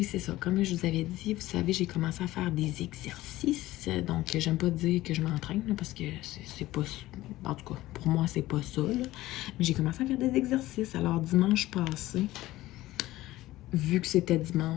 c'est ça. Comme je vous avais dit, vous savez, j'ai commencé à faire des exercices. Donc, j'aime pas dire que je m'entraîne, parce que c'est pas... En tout cas, pour moi, c'est pas ça, là. Mais j'ai commencé à faire des exercices. Alors, dimanche passé, vu que c'était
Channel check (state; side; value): quieter; right; 16.7 dB